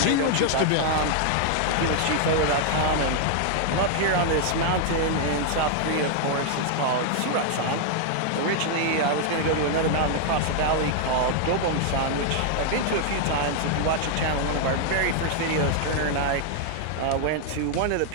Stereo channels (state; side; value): different; both; correlation 0.00